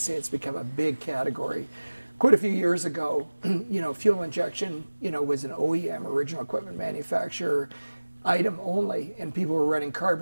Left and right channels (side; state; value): both; inverted; correlation -1.00